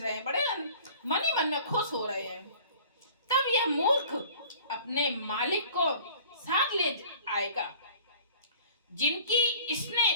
हैं, बड़े मन ही मन में खुश हो रहे हैं। तब यह मूर्ख अपने मालिक को साथ ले आएगा, जिनकी इसने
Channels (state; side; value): inverted; both; correlation -0.49